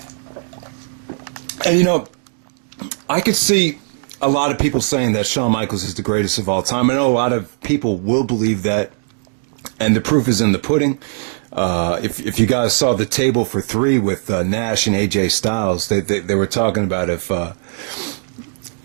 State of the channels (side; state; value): left; silent; digital silence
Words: And I could see a lot of people saying that Shawn Michaels is the greatest of all time. I know a lot of people will believe that, and the proof is in the pudding. If you guys saw the table for three with Nash and AJ Styles, they were talking about if